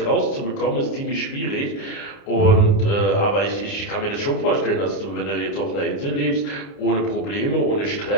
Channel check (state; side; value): late; right; 29 ms